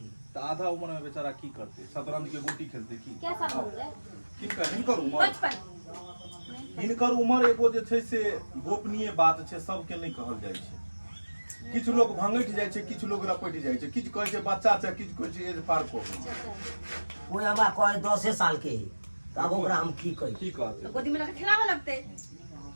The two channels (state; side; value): inverted; both; correlation -1.00